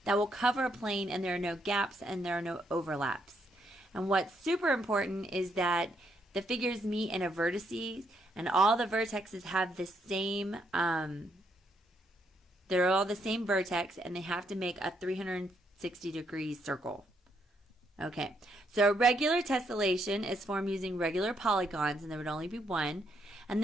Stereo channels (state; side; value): normal; both; correlation 0.75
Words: that will cover a plane, and there are no gaps and there are no overlaps. And what's super important is that the figures meet in a vertices, and all the vertexes have the same, they're all the same vertex, and they have to make a 360-degree circle. Okay, so a regular tessellation is formed using regular polygons, and there would only be one. And